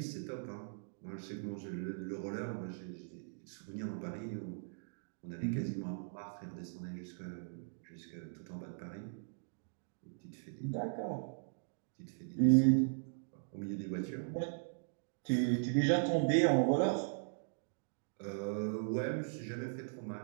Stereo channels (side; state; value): left; silent; digital silence